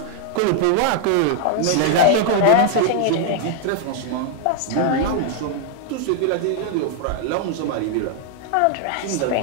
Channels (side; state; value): both; different; correlation 0.00